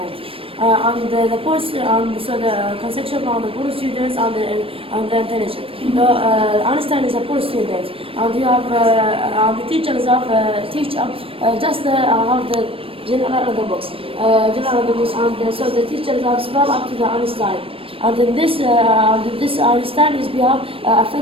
And the post and so the conception on the poor students and the intelligent. Einstein is a poor student, and you have and the teachers have teacher just have the general of the books, and so the teachers have spell up to the Einstein. And in this Einstein is behalf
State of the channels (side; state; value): left; late; 0.27 ms